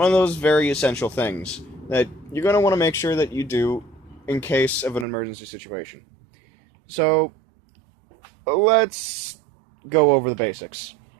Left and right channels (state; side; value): drops out; left; at 5.1 s